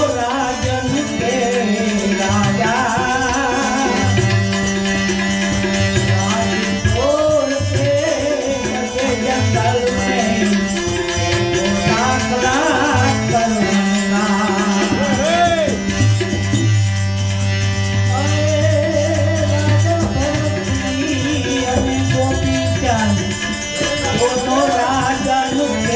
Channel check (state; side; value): identical; both; correlation 1.00